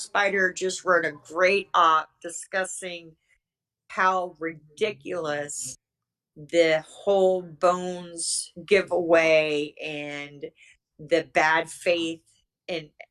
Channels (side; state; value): both; identical; correlation 1.00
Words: just wrote a great op discussing how ridiculous the whole Bones giveaway and the bad faith and